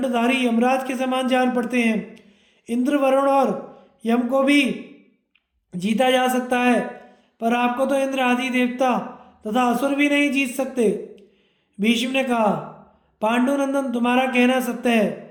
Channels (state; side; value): identical; both; correlation 1.00